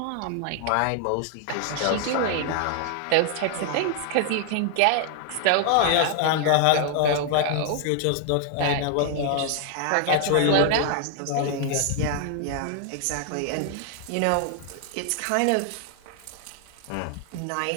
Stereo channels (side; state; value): both; different; correlation 0.00